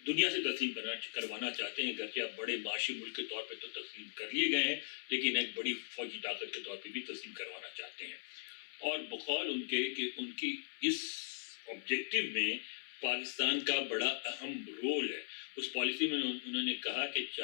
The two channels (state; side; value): silent; right; 52 dB below the other